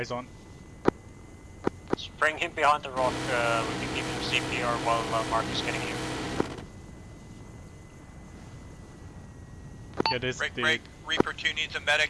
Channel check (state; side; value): identical; both; correlation 1.00